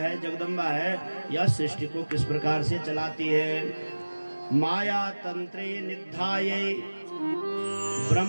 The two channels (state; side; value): inverted; both; correlation -1.00